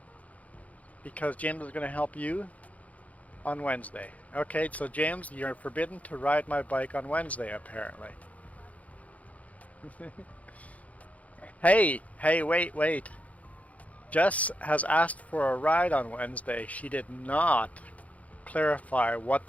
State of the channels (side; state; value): right; late; 0.069 ms